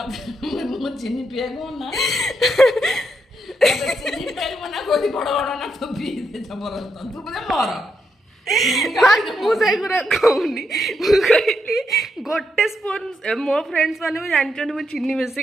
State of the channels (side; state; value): both; normal; correlation 0.81